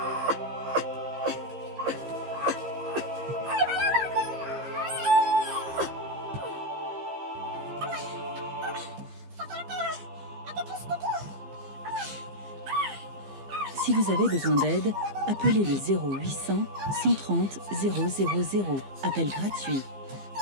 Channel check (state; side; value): late; left; 15 ms